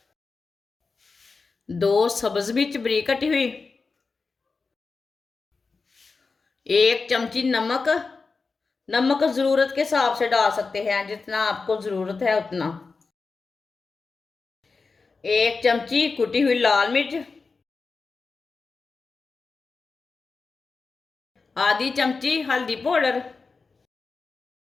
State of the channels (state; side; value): quieter; right; 4.4 dB